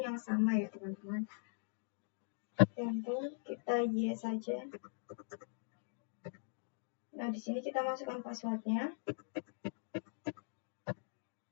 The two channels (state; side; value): silent; right; digital silence